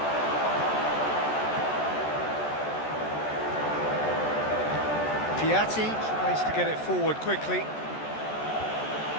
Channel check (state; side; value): late; right; 14 ms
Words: Piatti tries to get it forward quickly.